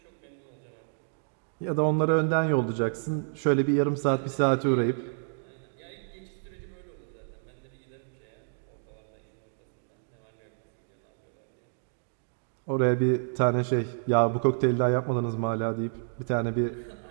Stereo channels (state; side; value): silent; left; digital silence